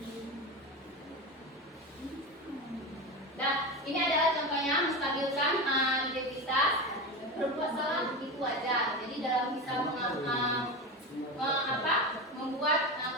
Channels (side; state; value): both; normal; correlation 0.22